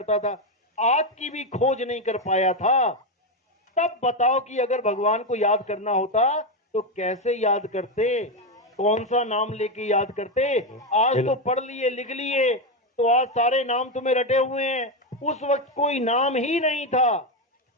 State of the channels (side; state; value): both; normal; correlation 0.09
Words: था, आग की भी खोज नहीं कर पाया था, तब बताओ कि अगर भगवान को याद करना होता तो कैसे याद करते, कौन सा नाम लेके याद करते? आज तो पढ़ लिए लिख लिए तो आज सारे नाम तुम्हें रटे हुए हैं, उस वक्त कोई नाम ही नहीं था,